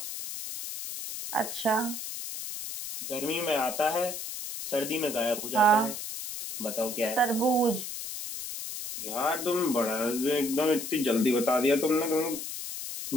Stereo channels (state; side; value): noise; left; hiss, 7 dB below the sound